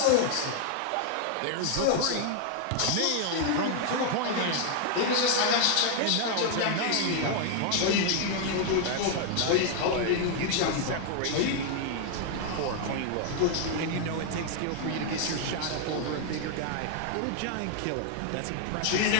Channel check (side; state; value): both; different; correlation 0.00